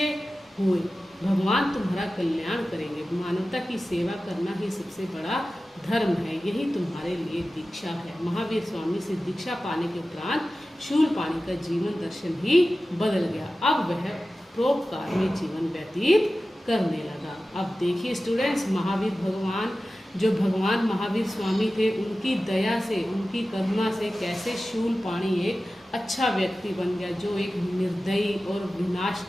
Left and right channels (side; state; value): both; normal; correlation 0.95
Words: हुए। भगवान तुम्हारा कल्याण करेंगे। मानवता की सेवा करना ही सबसे बड़ा धर्म है, यही तुम्हारे लिए दीक्षा है। महावीर स्वामी से दीक्षा पाने के उपरांत शूल पाणी का जीवन दर्शन ही बदल गया। अब वह परोपकार में जीवन व्यतीत करने लगा। अब देखिए स्टूडेंट्स, महावीर भगवान जो भगवान महावीर स्वामी थे, उनकी दया से, उनकी करुणा से कैसे शूलपाणी एक अच्छा व्यक्ति बन गया, जो एक निर्दयी और